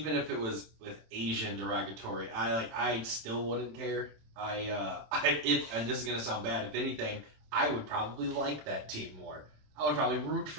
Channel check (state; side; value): late; left; 27 ms